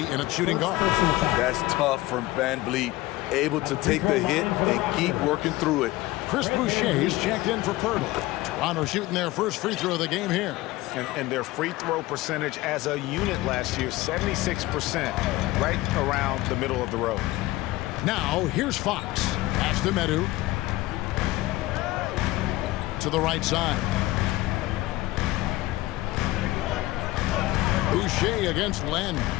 in a shooting guard. That's tough from VanVleet. Able to take the hit and keep working through it. Chris Boucher is checked in for Pirtle. Toronto shooting their first free throw of the game here. And their free throw percentage as a unit last year, 76%, right around the middle of the road. Now, here's Fox. Pass to Medu. To the right side. Boucher against Len.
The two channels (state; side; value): quieter; right; 18.3 dB